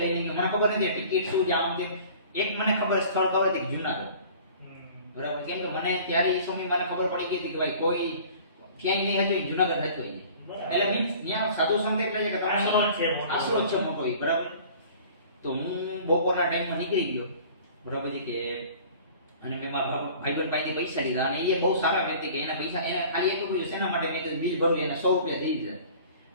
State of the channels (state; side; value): inverted; both; correlation -0.46